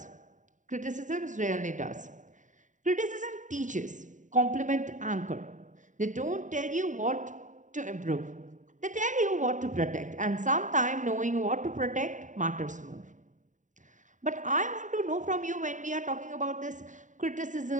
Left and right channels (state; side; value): late; left; 0.36 ms